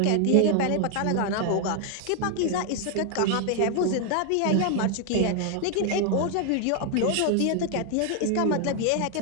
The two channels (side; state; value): both; different; correlation 0.00